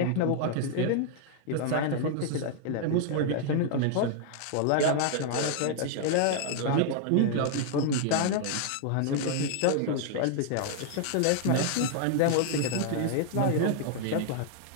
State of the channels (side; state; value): both; different; correlation 0.00